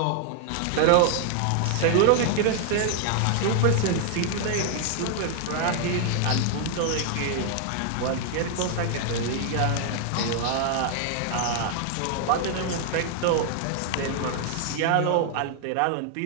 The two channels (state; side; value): different; both; correlation 0.00